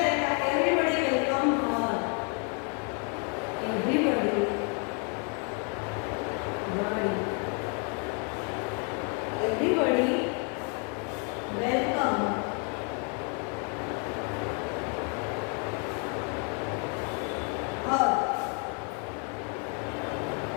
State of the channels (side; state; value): right; quieter; 38.2 dB